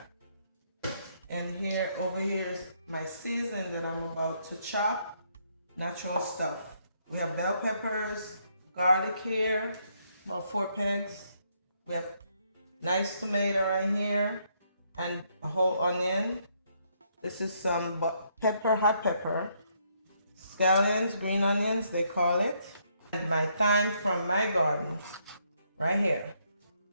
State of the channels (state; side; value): inverted; both; correlation -0.72